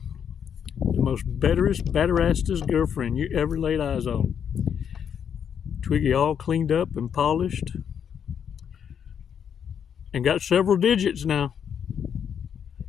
The most betterassest girlfriend you ever laid eyes on. Twiggy all cleaned up and polished. And got several digits now.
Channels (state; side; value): quieter; right; 8.0 dB